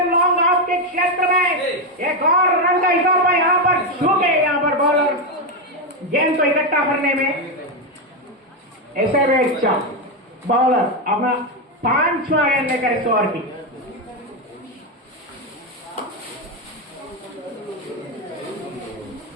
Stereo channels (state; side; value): normal; both; correlation 0.07